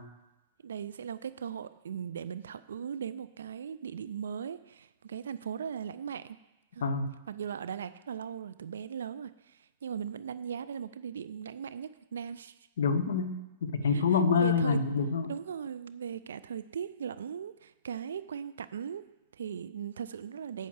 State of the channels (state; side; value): inverted; both; correlation -0.53